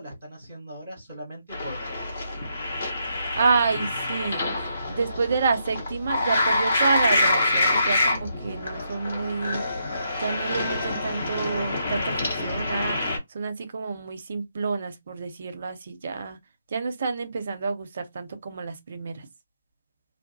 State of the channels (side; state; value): both; inverted; correlation -0.79